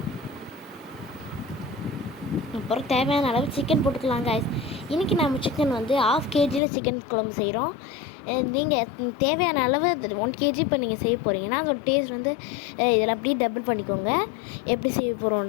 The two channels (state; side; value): drops out; right; at 6.6 s